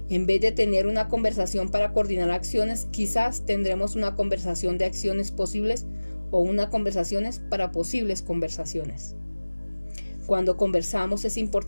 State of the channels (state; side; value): inverted; both; correlation -1.00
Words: En vez de tener una conversación para coordinar acciones, quizás tendremos una conversación de acciones posibles o una conversación para posibles conversaciones. Cuando conversamos es